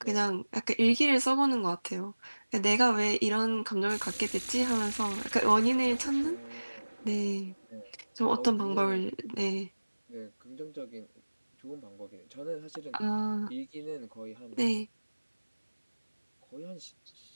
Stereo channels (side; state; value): both; inverted; correlation -1.00